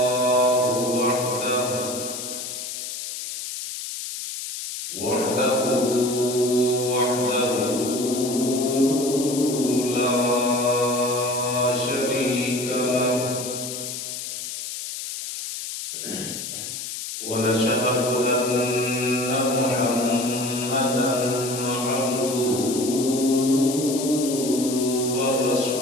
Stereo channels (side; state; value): left; noise; hiss, 7 dB below the sound